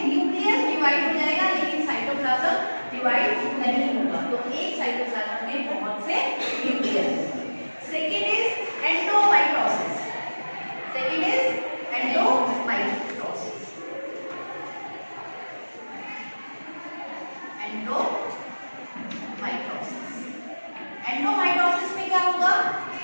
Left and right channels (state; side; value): inverted; both; correlation -1.00